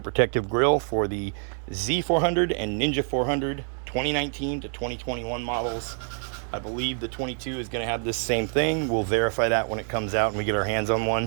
protective grill for the Z400 and Ninja 400 2019 to 2021 models. I believe the 22 is going to have this same thing. We'll verify that when it comes out and we get our hands on one.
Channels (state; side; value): silent; left; 58 dB below the other